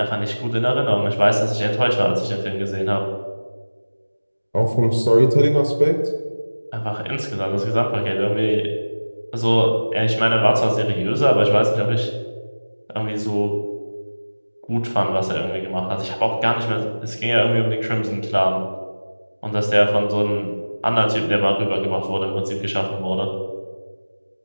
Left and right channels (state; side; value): inverted; both; correlation -1.00